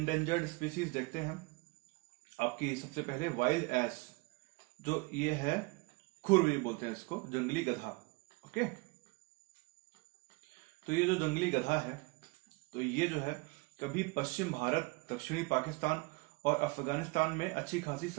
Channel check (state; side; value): quieter; left; 26.1 dB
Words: स्पीसीज देखते हैं। आपकी सबसे पहले वाइल्ड एस, जो ये है खुर बोलते हैं इसको, जंगली गधा। ओके, तो ये जो जंगली गधा है तो ये जो है कभी पश्चिम भारत, दक्षिणी पाकिस्तान और अफगानिस्तान में अच्छी खासी